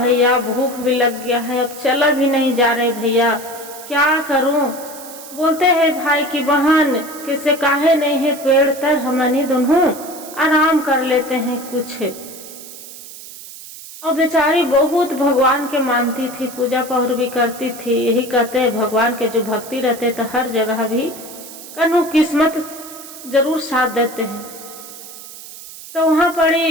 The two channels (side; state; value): right; noise; hiss, 15 dB below the sound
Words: भूख भी लग गया है, अब चला भी नहीं जा रहे भैया, क्या करूं। बोलते हैं भाई की बहन किसे काहे नहीं है पेड़ तर हमनी दोनों आराम कर लेते हैं कुछ। और बेचारी बहुत भगवान के मानती थी, पूजा पहर भी करती थी। यही कहते हैं भगवान के जो भक्ति रहते तो हर जगह भी कनु किस्मत जरूर साथ देते हैं। तो वहां पड़ी